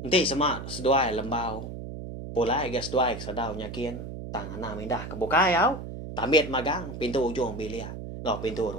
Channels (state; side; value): noise; right; hum, 9 dB below the sound